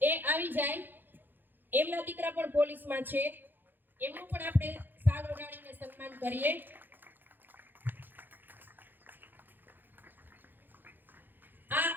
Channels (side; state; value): left; late; 0.092 ms